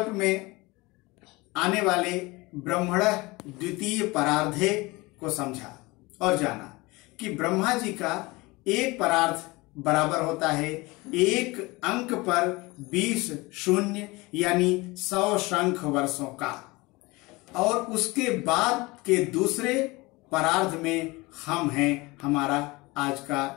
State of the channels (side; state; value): right; quieter; 23.1 dB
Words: में आने वाले ब्रह्मण द्वितीय परार्धे को समझा और जाना कि ब्रह्मा जी का एक परार्ध बराबर होता है एक अंक पर 20 शून्य यानी 100 शंख वर्षों का, और उसके बाद के दूसरे परार्ध में हम हैं, हमारा आज का